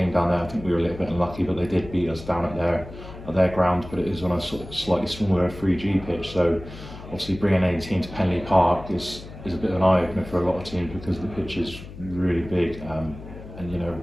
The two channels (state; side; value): noise; left; hum, 14 dB below the sound